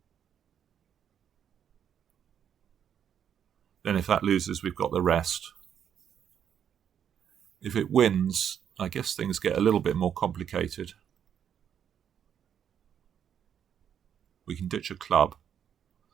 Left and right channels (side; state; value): left; quieter; 8.7 dB